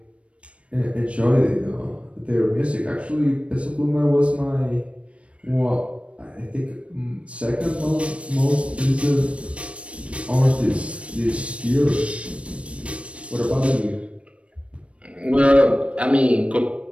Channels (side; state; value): left; late; 0.062 ms